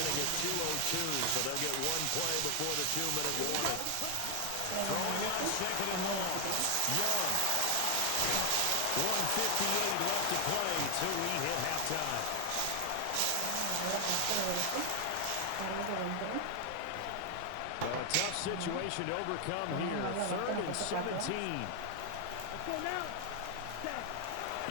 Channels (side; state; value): both; different; correlation 0.00